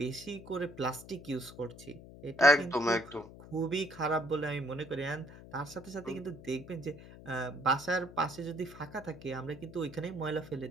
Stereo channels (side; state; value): left; noise; hum, 16 dB below the sound